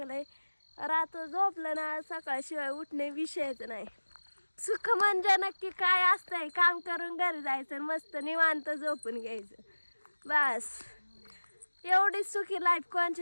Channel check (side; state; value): both; inverted; correlation -1.00